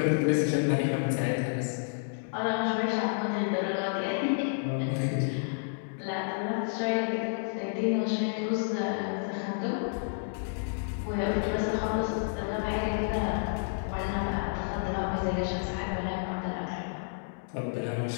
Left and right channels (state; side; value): silent; right; digital silence